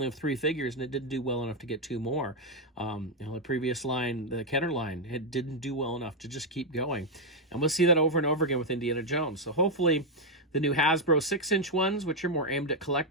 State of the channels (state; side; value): normal; both; correlation 0.01